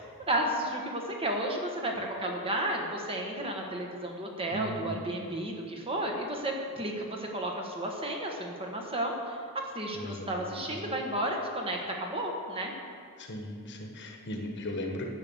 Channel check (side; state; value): both; normal; correlation 0.04